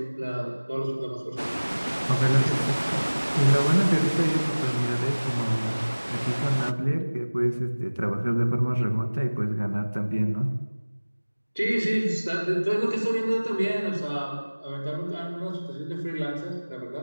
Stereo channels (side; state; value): both; inverted; correlation -1.00